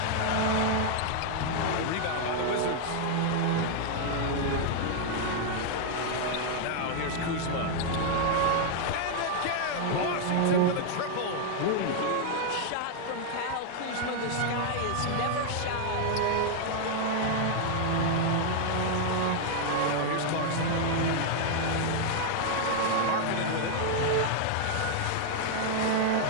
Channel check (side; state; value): both; different; correlation 0.00